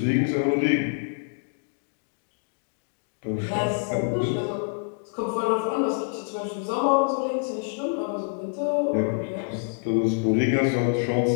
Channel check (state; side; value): silent; right; 61 dB below the other